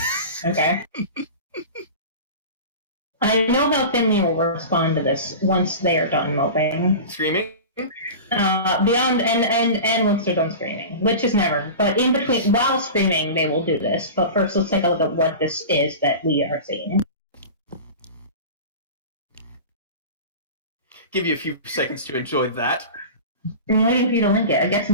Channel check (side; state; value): both; inverted; correlation -0.32